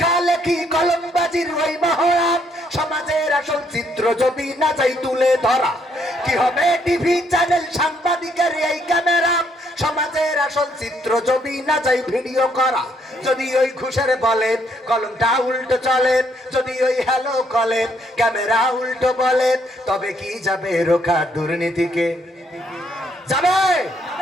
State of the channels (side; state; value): both; normal; correlation 0.70